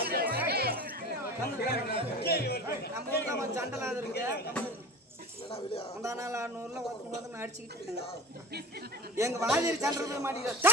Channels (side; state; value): both; normal; correlation 0.35